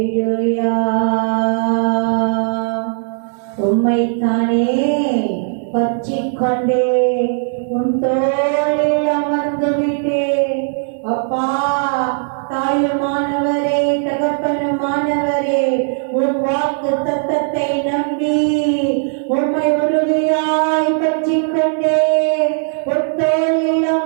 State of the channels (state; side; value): silent; left; digital silence